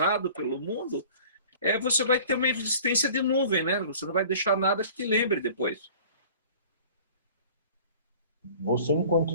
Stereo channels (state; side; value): inverted; both; correlation -0.46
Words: pelo mundo, você vai ter uma existência de nuvem, né? Você não vai deixar nada que te lembre depois. Você, enquanto